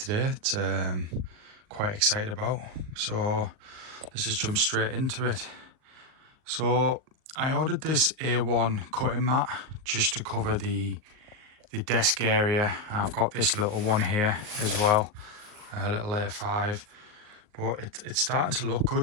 It's quite excited about. So let's just jump straight into it. So I ordered this A1 cutting mat just to cover the desk area. I've got this little one here as well, a little A5, but it's starting to look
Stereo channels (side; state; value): left; late; 39 ms